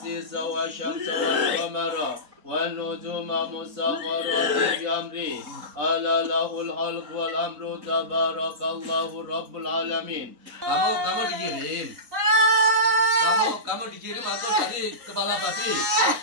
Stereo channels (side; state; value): left; late; 4.0 ms